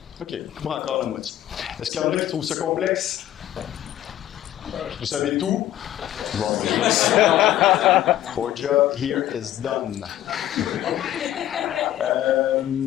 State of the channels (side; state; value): right; quieter; 12.7 dB